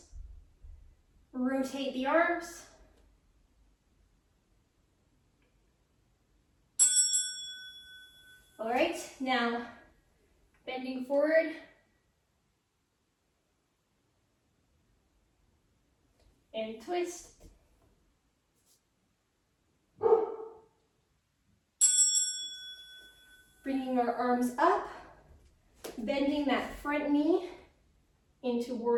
Rotate the arms. All right, now bending forward. And twist. Bringing our arms up, bending that front knee into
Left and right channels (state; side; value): identical; both; correlation 1.00